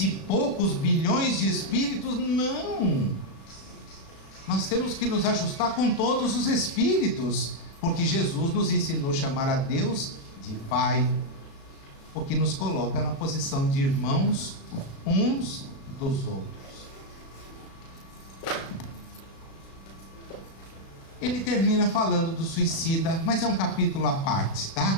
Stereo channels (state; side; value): late; right; 36 ms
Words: e poucos bilhões de espíritos? Não! Nós temos que nos ajustar com todos os espíritos, porque Jesus nos ensinou a chamar a Deus de Pai, o que nos coloca na posição de irmãos uns dos outros. Ele termina falando do suicida, mas é um capítulo à parte,